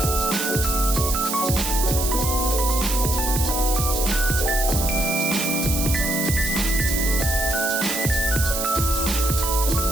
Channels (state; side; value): noise; right; hiss, 3 dB below the sound